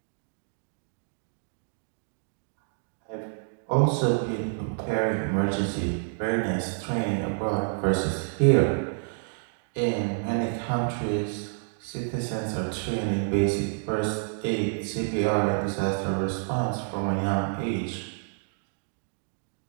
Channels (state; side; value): silent; left; digital silence